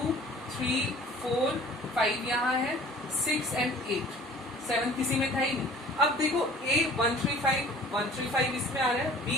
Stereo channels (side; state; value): both; normal; correlation 0.48